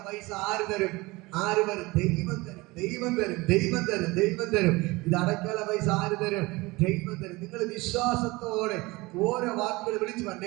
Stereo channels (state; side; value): quieter; left; 22.6 dB